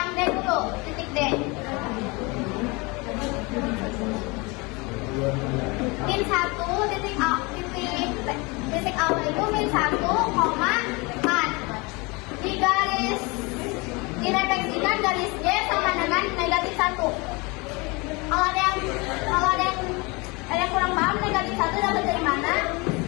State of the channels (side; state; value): right; quieter; 26.8 dB